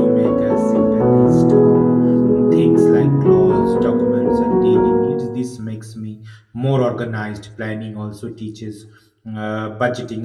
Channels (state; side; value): identical; both; correlation 1.00